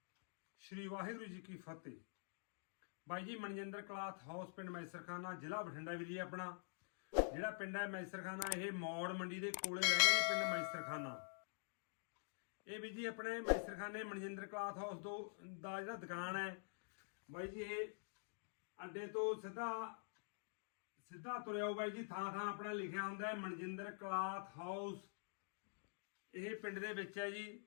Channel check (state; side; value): silent; right; digital silence